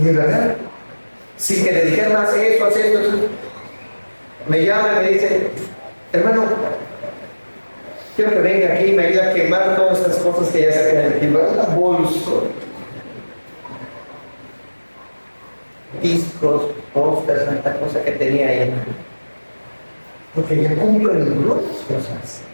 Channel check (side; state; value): both; inverted; correlation -1.00